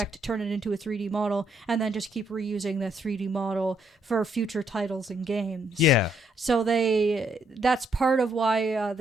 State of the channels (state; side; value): normal; both; correlation 0.72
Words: turn it into a 3D model, and then just keep reusing the 3D model for future titles and games. Yeah. So that's part of why